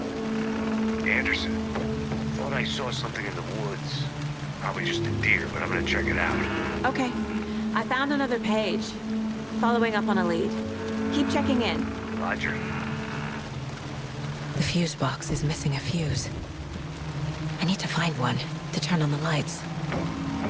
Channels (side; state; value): both; identical; correlation 1.00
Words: Anderson, thought I saw something in the woods. Probably just a deer, but I'm gonna check it out. Okay. I found another page. Following up on a lead. Keep checking in. Roger. The fuse box is missing a fuse. I need to find one to turn on the lights.